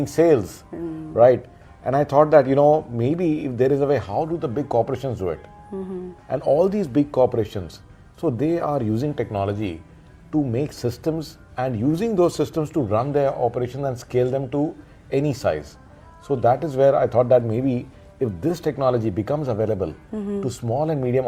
sales, right? And I thought that, you know, maybe if there is a way, how do the big corporations do it? And all these big corporations, so they are using technology to make systems and using those systems to run their operations and scale them to any size. So that is where I thought that maybe if this technology becomes available to small and medium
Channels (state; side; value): identical; both; correlation 1.00